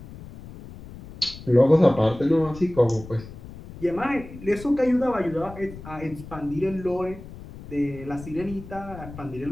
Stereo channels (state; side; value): noise; left; rumble, 15 dB below the sound